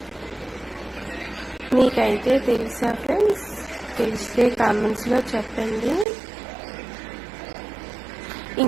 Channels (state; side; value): drops out; left; at 6.1 s